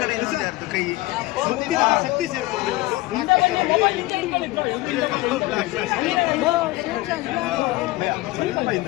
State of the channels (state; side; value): quieter; right; 19.6 dB